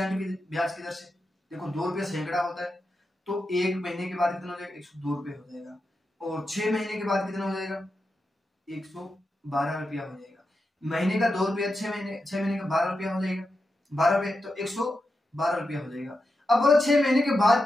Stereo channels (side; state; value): both; normal; correlation 0.88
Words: की ब्याज की दर से। देखो 2 रुपया सैकड़ा होता है, तो 1 महीने के बाद कितना हो जाएगा, 102 रुपये हो जाएगा। और 6 महीने के बाद कितना हो जाएगा, 112 रुपया हो जाएगा। महीने का 2 रुपया, 6 महीने का 12 रुपया हो जाएगा, 12 रुपये तो 112 रुपया हो जाएगा। अब बोलो 6 महीने के बाद